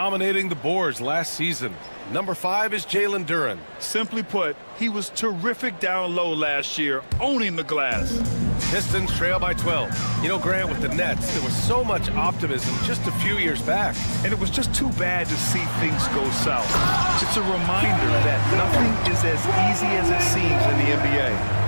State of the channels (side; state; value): both; inverted; correlation -1.00